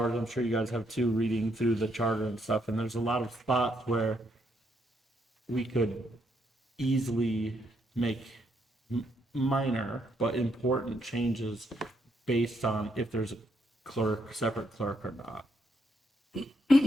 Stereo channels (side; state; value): both; normal; correlation 0.75